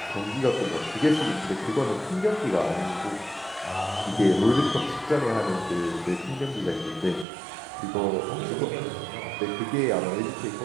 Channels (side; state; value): left; drops out; at 7.2 s